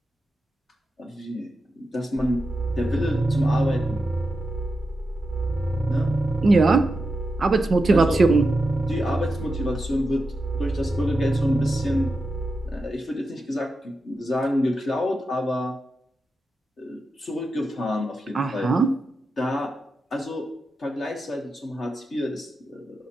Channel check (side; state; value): both; normal; correlation 0.89